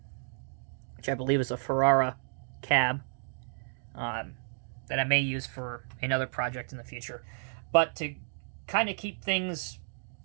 which I believe is a Ferrara cab, that I may use for another project in the future. But to kind of keep things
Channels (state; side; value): silent; left; digital silence